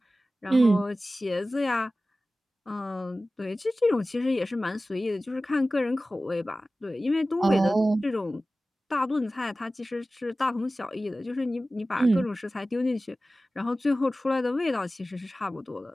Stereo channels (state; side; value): normal; both; correlation 0.96